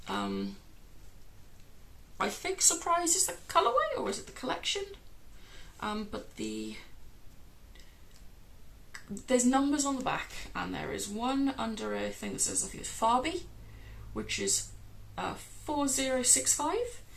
I think Surprise is the colourway, or is it the collection? But there's numbers on the back, and there is one under a thing that says, I think it's Farby, which is 4065,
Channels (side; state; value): both; identical; correlation 1.00